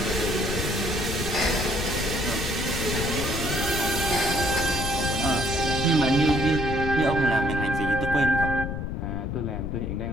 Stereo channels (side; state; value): left; noise; rumble, 4 dB below the sound